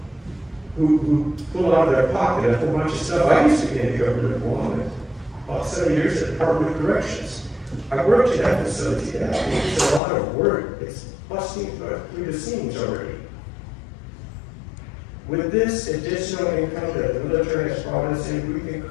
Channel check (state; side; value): drops out; right; at 10.0 s